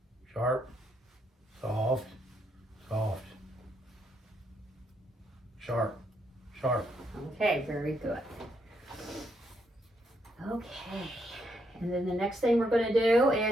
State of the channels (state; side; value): normal; both; correlation 0.76